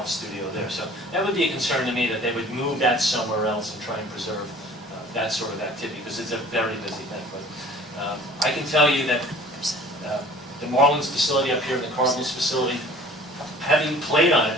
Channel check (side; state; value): both; normal; correlation 0.48